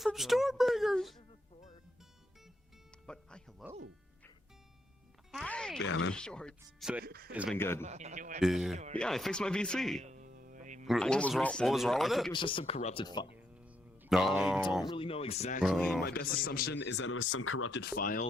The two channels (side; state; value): both; normal; correlation 0.78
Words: Stormbringers. But hi, hello. Hi. Yeah, man. Shorts. So it's been good. Yeah. Yeah, I fixed my VC. What was wrong? What was wrong with I think it? it was just some corrupted file. No. I don't really know exactly. Oh. My best assumption is that it was some corrupted